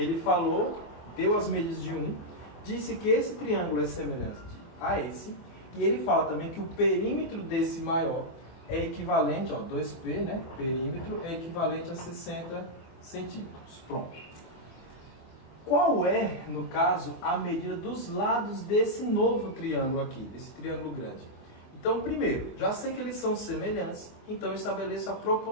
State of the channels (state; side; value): late; right; 23 ms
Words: falou, deu as medidas de um, disse que esse triângulo é semelhante a esse, e ele fala também que o perímetro desse maior é equivalente, ó, 2P, né? Perímetro é equivalente a 60 centímetros. Pronto. Qual é, no caso, a medida dos lados desse novo triângulo aqui, desse triângulo grande? Então, primeiro, já sei que eles são semelhantes, então estabeleço a